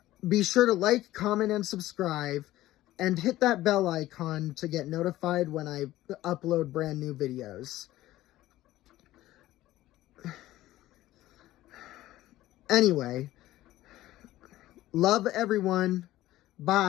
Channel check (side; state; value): right; quieter; 15.5 dB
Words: Be sure to like, comment, and subscribe, and hit that bell icon to get notified when I upload brand new videos. Anyway, love everyone.